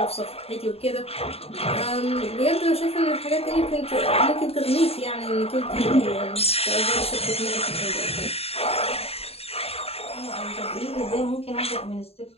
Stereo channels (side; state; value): right; late; 0.29 ms